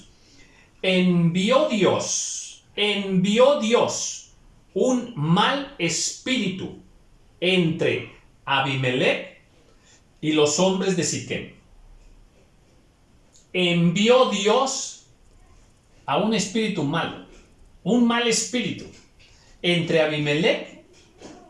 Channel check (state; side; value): identical; both; correlation 1.00